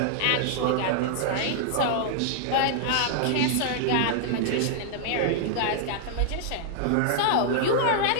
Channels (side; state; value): both; different; correlation -0.01